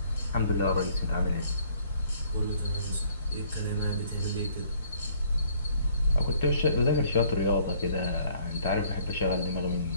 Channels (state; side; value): inverted; both; correlation -0.61